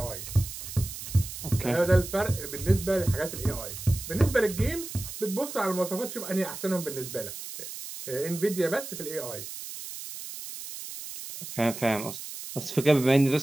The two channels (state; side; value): noise; right; hiss, 10 dB below the sound